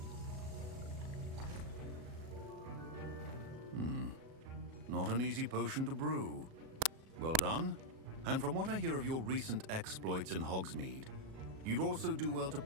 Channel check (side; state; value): left; late; 37 ms